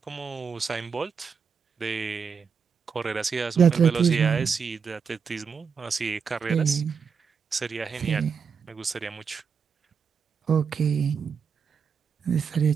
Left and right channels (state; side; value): quieter; left; 6.1 dB